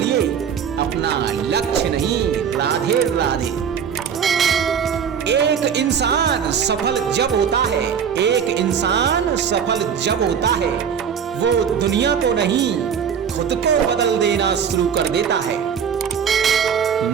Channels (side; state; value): left; quieter; 7.5 dB